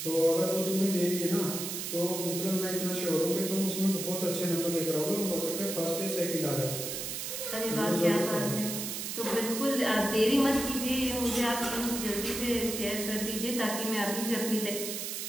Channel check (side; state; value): right; noise; hiss, 4 dB below the sound